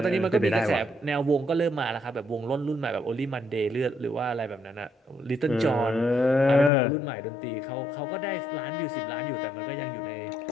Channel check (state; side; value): drops out; right; at 6.7 s